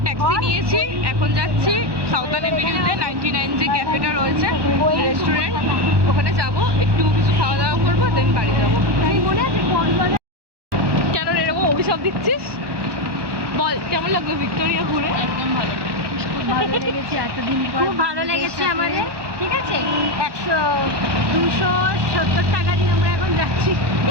ট্যাক্সি নিয়েছি, এখন যাচ্ছি সাউথার্ন এভিনিউতে 99 যে ক্যাফেটা রয়েছে রেস্টুরেন্ট, ওখানে যাব, একটু কিছু খাওয়া দাওয়া করবো, দেন বাড়ি যাবো। কেন এরকম অভিশাপ দিচ্ছিস? বল কেমন লাগলো ভিক্টোরিয়া ঘুরে? একদম ভালো, খুব ভালো লেগেছে, এতদিন পর খুব ভালো লেগেছে আমাদের। ঠিক আছে, 270 টাকা দিয়ে আমরা এখন যাচ্ছি।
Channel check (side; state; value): left; late; 1.1 ms